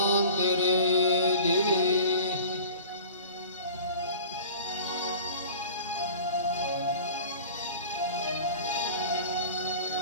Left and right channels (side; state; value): both; inverted; correlation -0.41